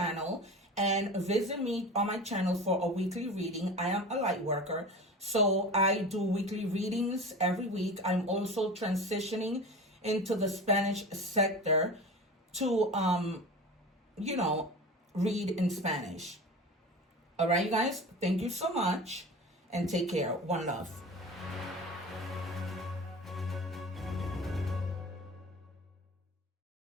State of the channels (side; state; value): both; normal; correlation 0.33